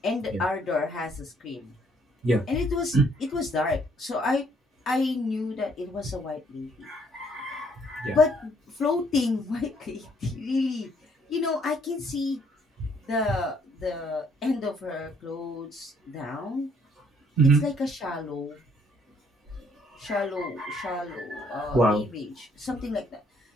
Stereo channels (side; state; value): both; normal; correlation 0.66